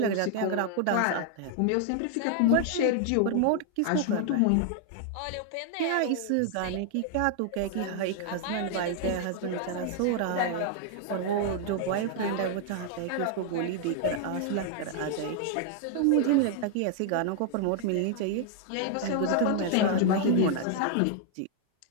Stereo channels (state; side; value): different; both; correlation 0.00